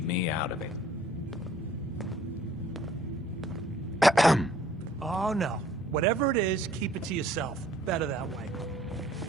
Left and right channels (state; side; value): normal; both; correlation 0.57